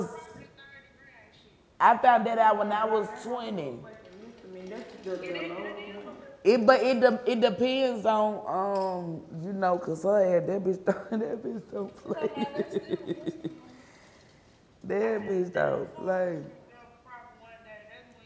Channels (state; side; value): identical; both; correlation 1.00